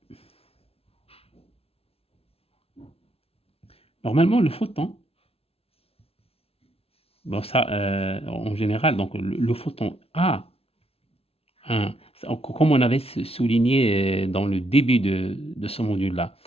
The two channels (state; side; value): late; right; 0.28 ms